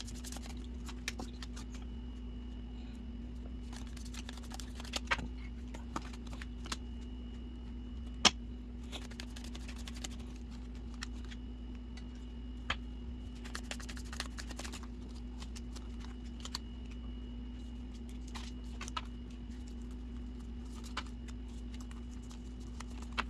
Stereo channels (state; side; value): identical; both; correlation 1.00